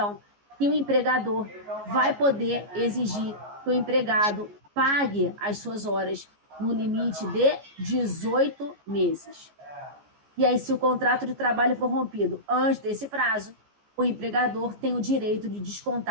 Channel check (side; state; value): left; late; 14 ms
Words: que o empregador vai poder exigir que o empregado pague as suas horas no limite de 18 meses. E aí, se o contrato de trabalho for rompido antes desse prazo, o empregador tem o direito de